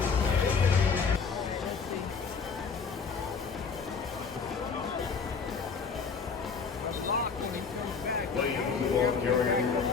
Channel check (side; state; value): right; quieter; 5.4 dB